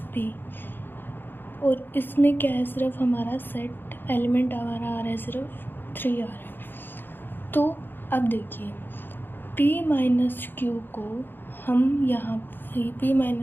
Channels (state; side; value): late; right; 0.097 ms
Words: p. और इसमें क्या है, सिर्फ हमारा सेट एलिमेंट हमारा आ रहा है, सिर्फ 3 आ रहा है. तो अब देखिए p माइनस क्यू को हम यहाँ p